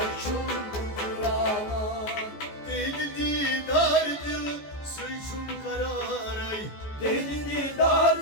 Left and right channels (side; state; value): right; late; 14 ms